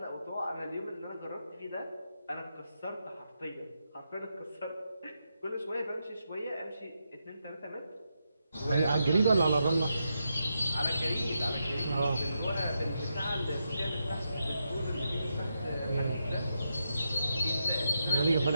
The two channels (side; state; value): both; inverted; correlation -0.84